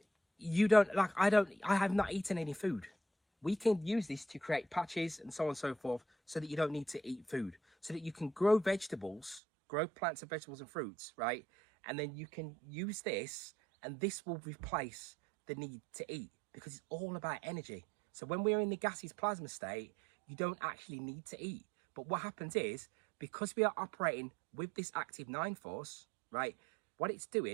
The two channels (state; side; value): drops out; left; at 9.4 s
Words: you don't, like, I have not eaten any food. We can use this to create patches and so on and so forth, so that you don't need to eat food, so that you can grow vegetables, grow plants and vegetables and fruits, right? And then you can use this, and this will replace the need to eat, because it's all about energy. So when we're in the gaseous plasma state, you don't actually need to eat. But what happens is, because we are operating with this active 9 force, right, what it's